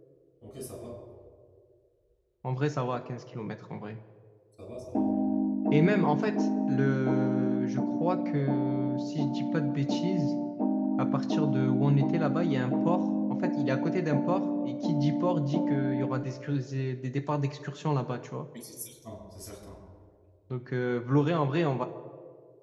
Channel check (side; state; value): both; identical; correlation 1.00